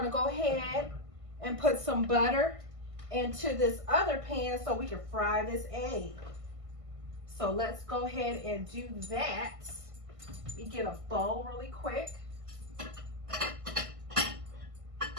to go ahead and put some butter into this other pan so we can fry this egg. So let's go ahead and do that. We get a bowl really quick. Or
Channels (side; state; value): left; late; 1.5 ms